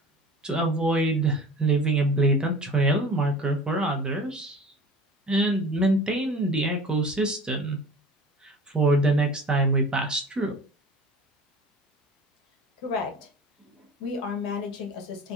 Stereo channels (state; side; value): normal; both; correlation 0.41